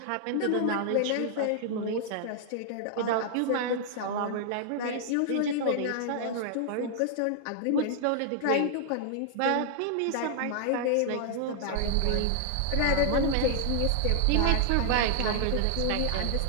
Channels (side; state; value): both; different; correlation -0.01